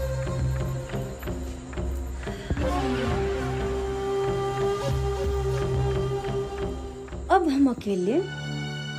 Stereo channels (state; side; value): identical; both; correlation 1.00